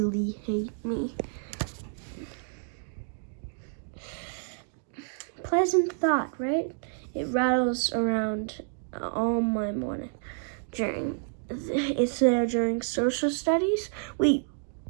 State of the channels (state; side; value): silent; left; 58 dB below the other